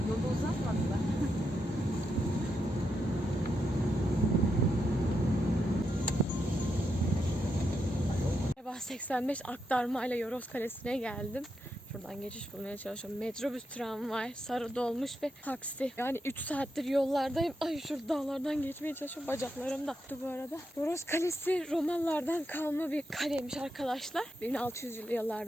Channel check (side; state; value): both; normal; correlation 0.84